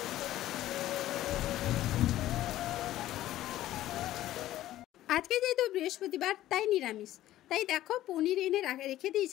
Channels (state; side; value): quieter; right; 14.1 dB